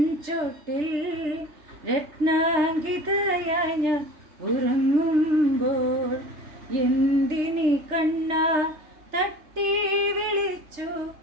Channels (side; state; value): left; late; 3.3 ms